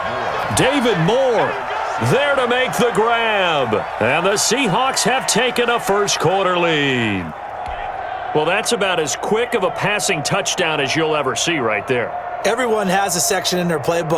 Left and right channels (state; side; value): identical; both; correlation 1.00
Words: David Moore there to make the grab. And the Seahawks have taken a first-quarter lead. Well, that's about as quick of a passing touchdown as you'll ever see right there. Everyone has a section in their